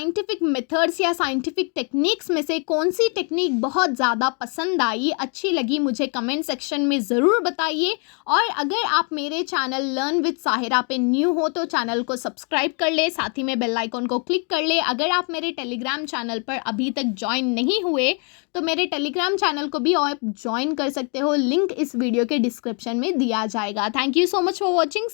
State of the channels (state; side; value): quieter; right; 37.9 dB